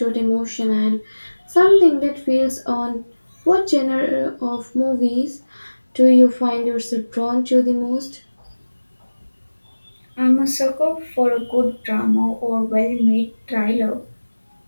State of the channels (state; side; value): inverted; both; correlation -1.00